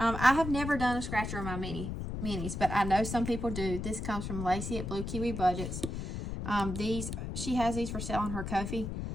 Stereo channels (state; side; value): noise; left; rumble, 5 dB below the sound